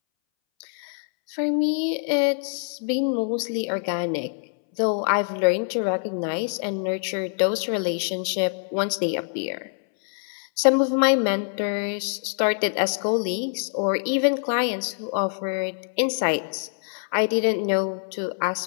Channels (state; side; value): silent; right; 62 dB below the other